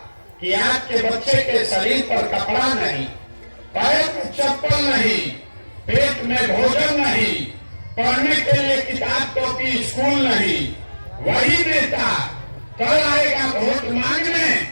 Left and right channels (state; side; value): inverted; both; correlation -1.00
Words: कि आपके बच्चे के शरीर पर कपड़ा नहीं, पैर में चप्पल नहीं, पेट में भोजन नहीं, पढ़ने के लिए किताब कॉपी स्कूल नहीं, वही नेता कल आएगा वोट मांगने